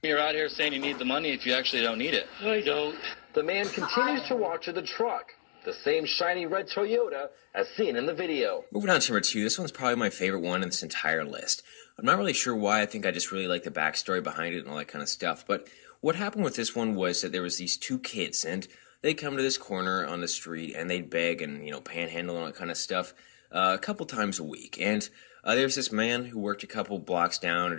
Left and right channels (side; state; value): right; silent; digital silence